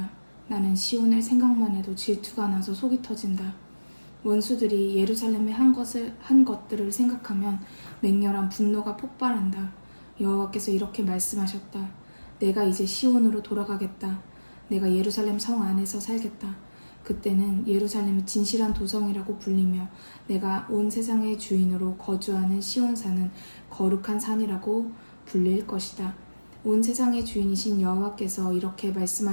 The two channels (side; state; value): both; inverted; correlation -1.00